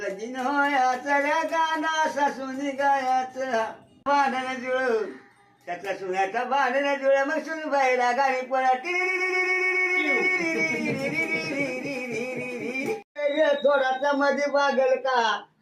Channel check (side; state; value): both; identical; correlation 1.00